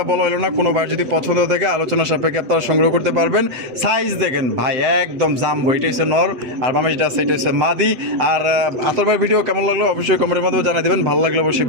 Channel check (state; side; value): late; left; 7.8 ms